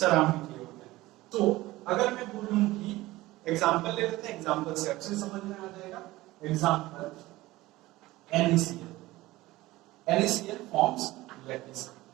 किए होते हैं। तो अगर मैं बोलूं कि एग्जांपल ले लेते हैं, एग्जांपल से अच्छे समझ में आ जाएगा। एग्जांपल NaCl forms lattice,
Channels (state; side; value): quieter; left; 18.3 dB